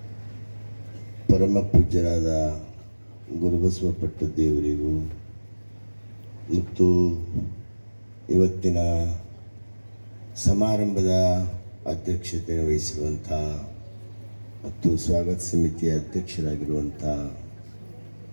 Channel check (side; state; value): both; inverted; correlation -1.00